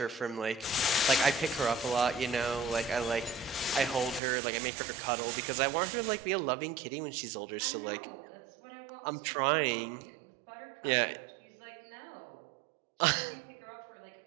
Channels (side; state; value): left; drops out; at 4.2 s